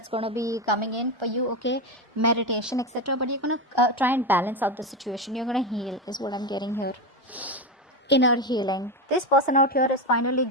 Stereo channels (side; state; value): both; normal; correlation 0.15